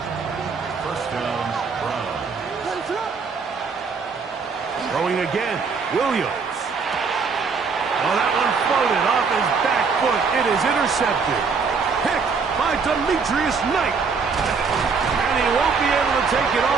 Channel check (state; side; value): quieter; left; 5.2 dB